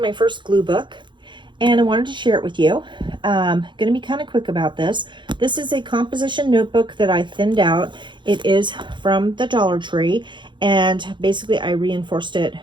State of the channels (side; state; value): left; late; 0.23 ms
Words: first glue book and I wanted to share it with you. Going to be kind of quick about this. This is a composition notebook that I thinned out. It is from the Dollar Tree, and basically I reinforced it